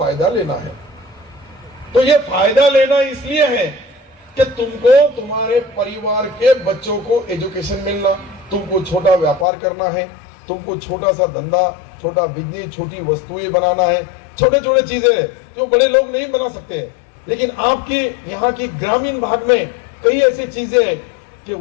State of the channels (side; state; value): right; drops out; at 9.5 s